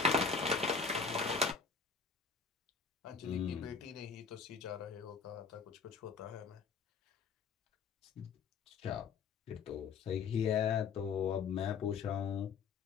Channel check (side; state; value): right; quieter; 5.5 dB